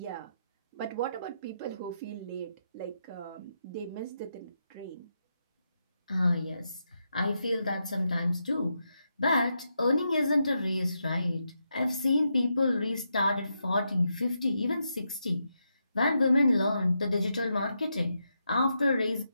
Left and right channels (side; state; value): both; inverted; correlation -0.84